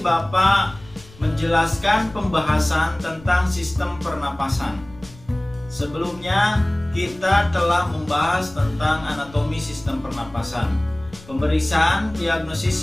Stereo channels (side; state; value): left; noise; rumble, 21 dB below the sound